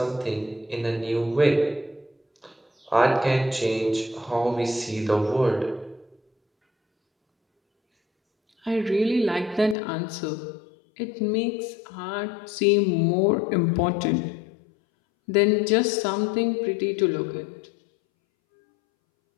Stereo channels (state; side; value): drops out; right; at 9.8 s